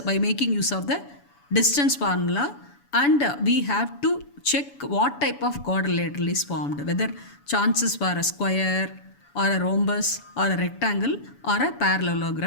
by making use of the distance formula, and we have to check what type of quadrilateral is formed, whether chances for a square or a rhombus or a rectangle or a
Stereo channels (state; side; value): late; right; 7.0 ms